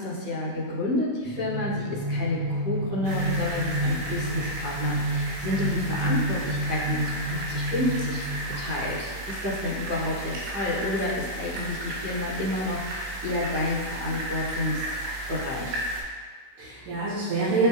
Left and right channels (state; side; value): late; left; 16 ms